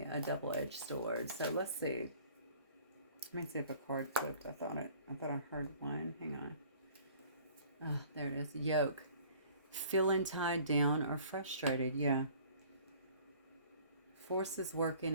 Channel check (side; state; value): both; inverted; correlation -0.51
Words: a double-edged sword. So let's see. Let me see if a card flipped. I thought I heard one. Hang on. Oh, there it is. Yoke. Feeling tied down or frustrated. Yeah. Forces working